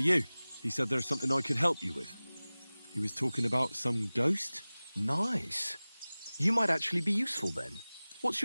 you. He said there's something I could help you with. He was talking about some ghost? Nice. You might actually be useful then. What's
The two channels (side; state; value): both; inverted; correlation -0.99